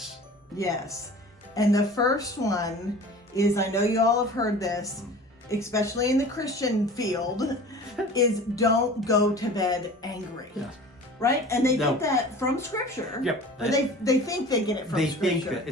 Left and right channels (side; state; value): both; normal; correlation 0.40